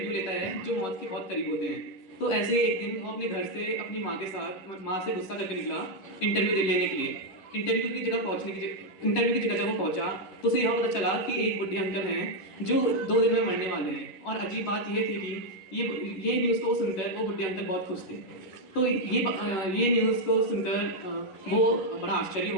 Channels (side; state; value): right; late; 11 ms